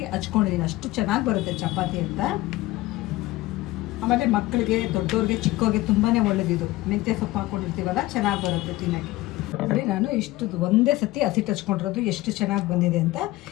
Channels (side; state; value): right; quieter; 18.1 dB